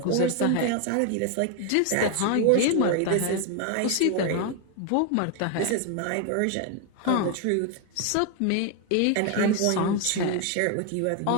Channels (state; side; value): different; both; correlation 0.01